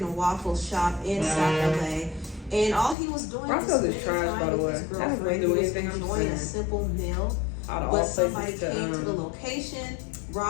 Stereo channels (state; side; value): drops out; right; at 3.0 s